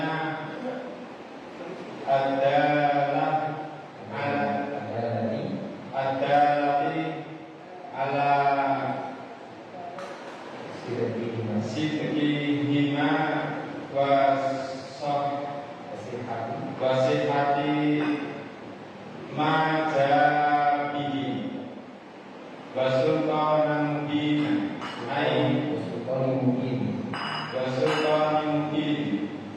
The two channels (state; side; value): identical; both; correlation 1.00